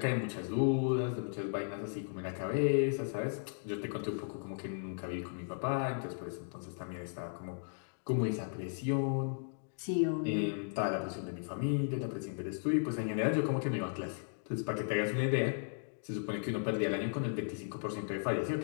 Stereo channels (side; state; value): right; silent; digital silence